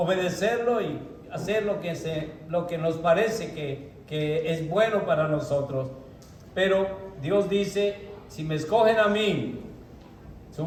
y hacer lo que nos parece que es bueno para nosotros. Pero Dios dice, si me escogen a mí, su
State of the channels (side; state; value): both; identical; correlation 1.00